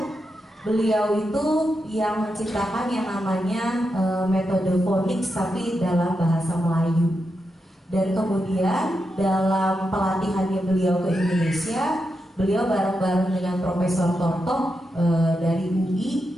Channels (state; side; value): normal; both; correlation 0.86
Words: Beliau itu yang menciptakan yang namanya metode phonics tapi dalam bahasa Melayu. Dan kemudian dalam pelatihannya beliau ke Indonesia, beliau bareng-bareng dengan Profesor Tortok dari UI